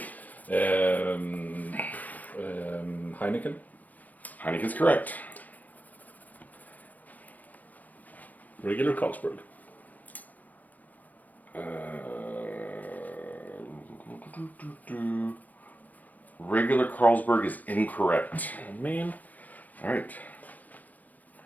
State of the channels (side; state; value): right; late; 0.080 ms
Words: Heineken. Heineken's correct. Regular Carlsberg. Regular Carlsberg is incorrect. Oh, man. All right.